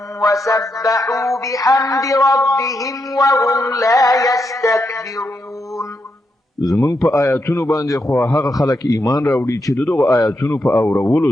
وسبحوا بحمد ربهم وهم لا يستكبرون. زمون په آیاتونو باندې خو هغه خلک ایمان راوړي چې دغه آیاتونو په اورولو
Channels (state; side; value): normal; both; correlation 0.83